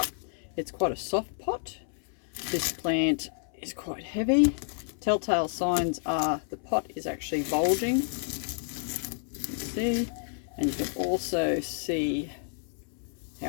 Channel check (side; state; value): right; silent; 58 dB below the other